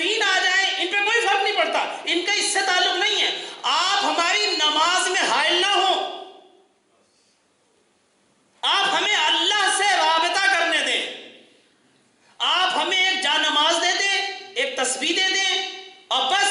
آ جائیں ان پہ کوئی فرق نہیں پڑتا، ان کا اس سے تعلق نہیں ہے. آپ ہماری نماز میں حائل نہ ہو، آپ ہمیں اللہ سے رابطہ کرنے دیں. آپ ہمیں ایک جا نماز دے دیں، ایک تسبیح دے دیں، اور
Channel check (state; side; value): identical; both; correlation 1.00